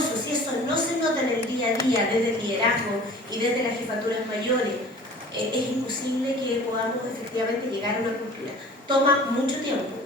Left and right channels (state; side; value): normal; both; correlation 0.44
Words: Si eso no se nota en el día a día, desde el liderazgo y desde las jefaturas mayores, es imposible que podamos efectivamente llegar a una cultura. Toma mucho tiempo.